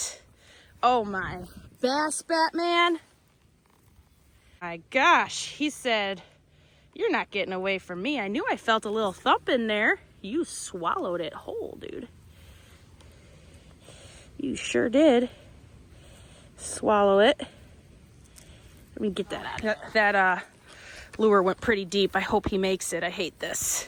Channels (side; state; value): both; identical; correlation 1.00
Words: Oh my. Bass Batman. My gosh. He said, "You're not getting away from me." I knew I felt a little thump in there. You swallowed it whole, dude. You sure did. Swallow it. Let me get that out. That lure went pretty deep. I hope he makes it. I hate